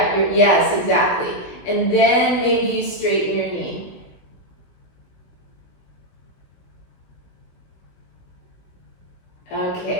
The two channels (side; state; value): right; late; 16 ms